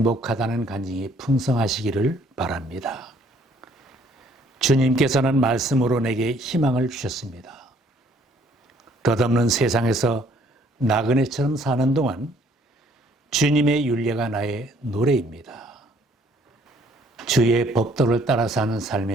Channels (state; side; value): normal; both; correlation 0.62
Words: 간증이 풍성하시기를 바랍니다. 주님께서는 말씀으로 내게 희망을 주셨습니다. 덧없는 세상에서 나그네처럼 사는 동안 주님의 윤례가 나의 노래입니다. 주의 법도를 따라 사는